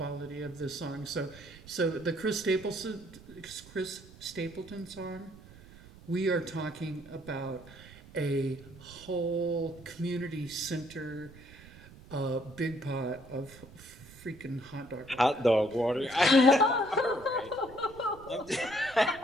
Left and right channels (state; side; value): noise; right; rumble, 20 dB below the sound